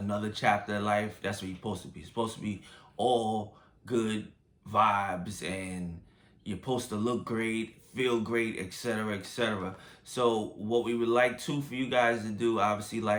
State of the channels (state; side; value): identical; both; correlation 1.00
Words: chapter of life, that's what you're supposed to be. It's supposed to be all good vibes, and you're supposed to look great, feel great, etc., etc. So what we would like for you guys to do, obviously,